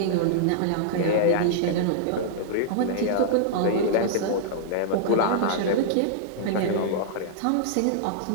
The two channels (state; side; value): different; both; correlation -0.02